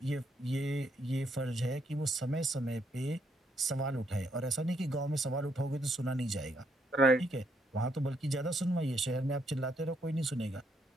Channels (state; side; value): normal; both; correlation 0.74